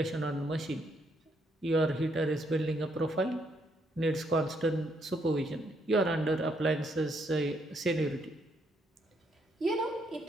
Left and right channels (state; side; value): normal; both; correlation 0.74